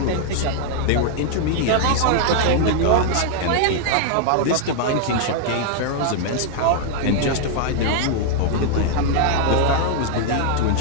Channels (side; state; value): both; different; correlation 0.00